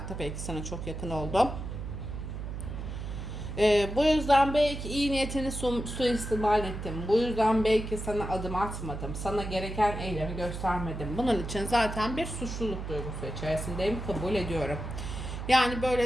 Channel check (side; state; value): right; noise; hum, 6 dB below the sound